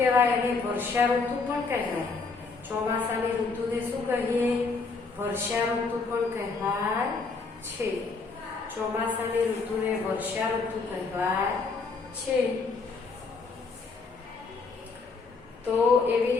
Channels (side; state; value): right; quieter; 4.3 dB